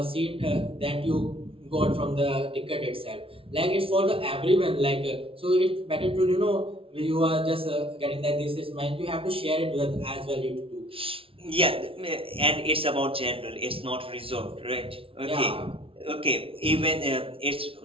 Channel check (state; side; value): late; left; 0.26 ms